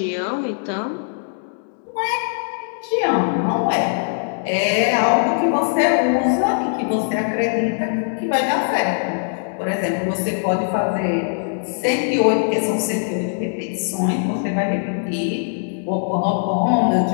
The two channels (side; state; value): right; silent; digital silence